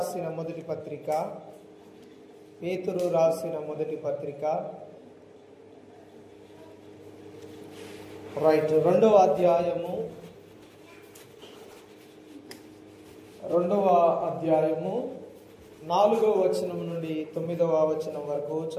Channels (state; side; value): identical; both; correlation 1.00